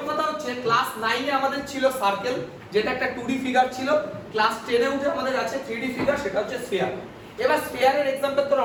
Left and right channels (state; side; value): identical; both; correlation 1.00